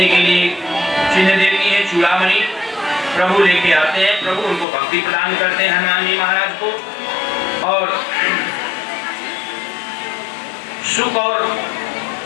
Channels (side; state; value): right; drops out; at 4.7 s